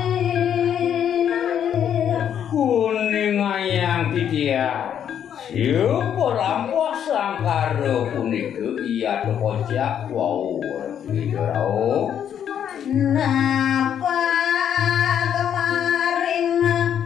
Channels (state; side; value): quieter; right; 9.1 dB